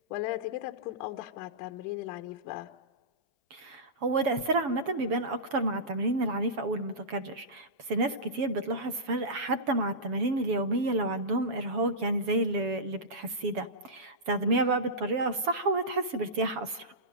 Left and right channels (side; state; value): left; late; 7.1 ms